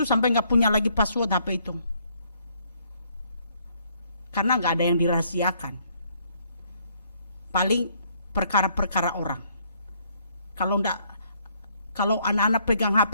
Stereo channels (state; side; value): inverted; both; correlation -0.67